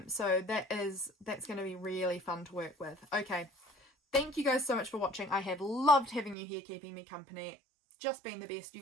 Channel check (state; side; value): drops out; left; at 6.4 s